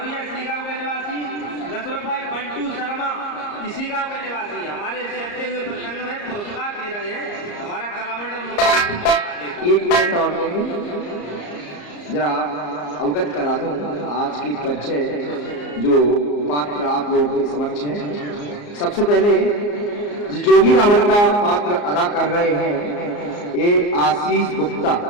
इसी गांव के निवासी। 10 रुपए बंटू शर्मा इसी गांव के निवासी। हमारे चलते हुए प्रसंग में पुरस्कार दे रहे हैं हमारा कलामंडल। 1 मिनट और जरा अवगत करा दूं आज की परिचय जो पात्र आप लोगों के समक्ष है। सबसे पहले जोगी रावण का पात्र अदा कर रहे हैं ये आशीष गुप्ता,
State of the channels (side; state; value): right; late; 34 ms